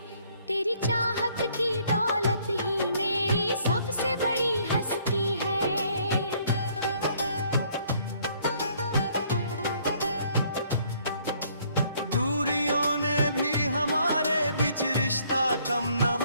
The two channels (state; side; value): inverted; both; correlation -0.64